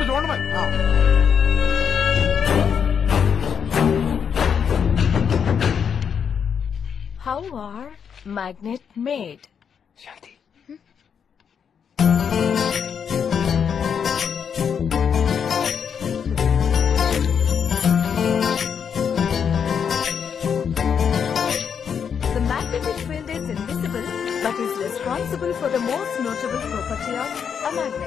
చూడండి మరి. How are magnet made? Shanti. The magnetic field is invisible but is responsible for the most notable property of a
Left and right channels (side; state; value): right; quieter; 7.3 dB